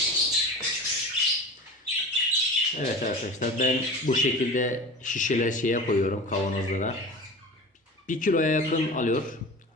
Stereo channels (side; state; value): both; normal; correlation 0.35